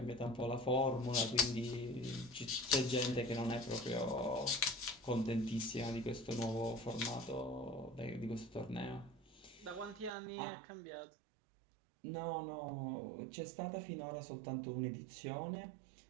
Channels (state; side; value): drops out; left; at 10.1 s